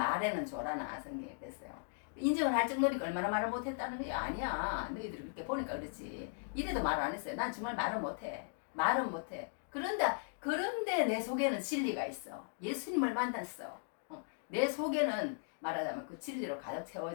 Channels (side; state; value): right; silent; digital silence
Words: 조라나 성경에 그랬어요. 인정을 할 정도니까 얼마나 말을 못했다는 게 아니야. 너희들이 그렇게 보니까 그렇지. 이래도 말 안 했어요. 난 정말 말은 못해. 말은 못해. 그런데 내 속에는 진리가 있어. 예수님을 만났어. 내 속에는 말하자면 그 진리로 가득